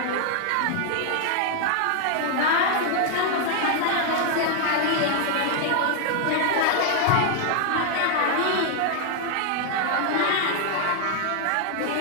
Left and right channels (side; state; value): both; different; correlation 0.00